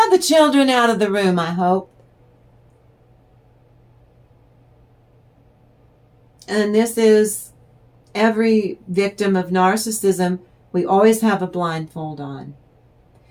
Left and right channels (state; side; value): identical; both; correlation 1.00